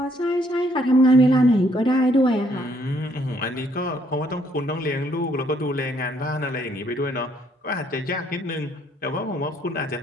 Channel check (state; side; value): normal; both; correlation 0.68